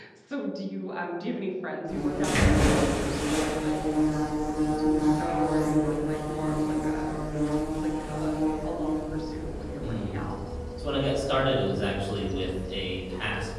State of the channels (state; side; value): identical; both; correlation 1.00